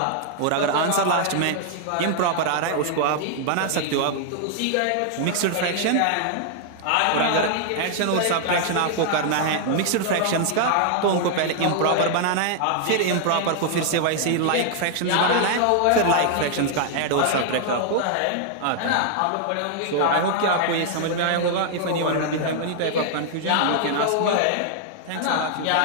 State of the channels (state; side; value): different; both; correlation 0.00